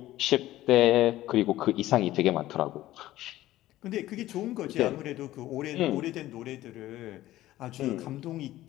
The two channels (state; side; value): quieter; right; 15.3 dB